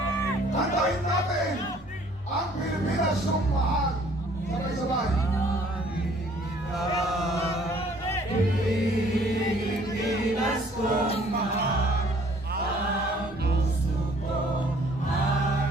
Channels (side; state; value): both; normal; correlation 0.58